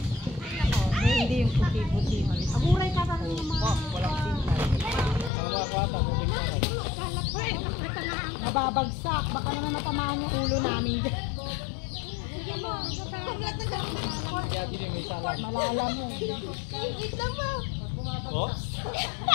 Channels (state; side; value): drops out; right; at 5.3 s